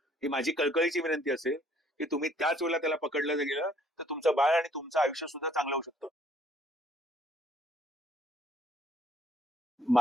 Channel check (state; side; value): normal; both; correlation 0.62